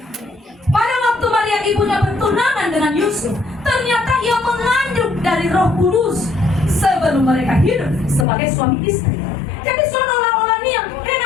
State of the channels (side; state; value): right; drops out; at 8.2 s